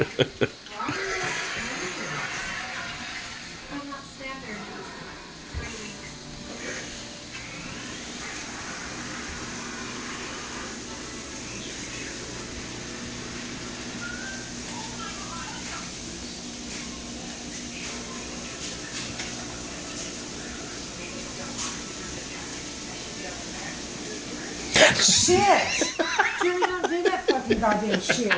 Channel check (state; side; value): identical; both; correlation 1.00